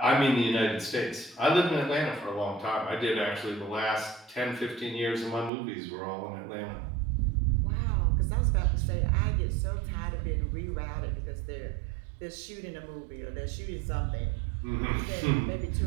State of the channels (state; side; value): drops out; left; at 5.5 s